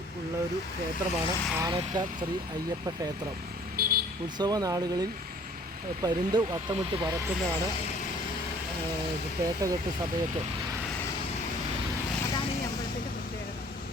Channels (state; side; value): normal; both; correlation 0.54